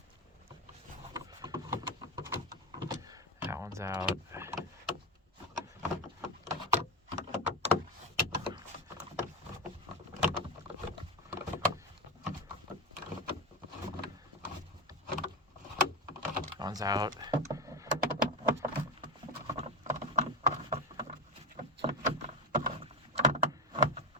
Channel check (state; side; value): normal; both; correlation 0.16